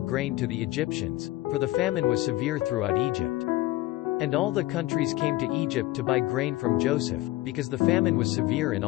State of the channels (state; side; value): quieter; right; 17.6 dB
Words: grain to the Egyptians, for the famine was severe throughout Egypt. And all the countries came to Egypt to buy grain from Joseph, because the famine was severe in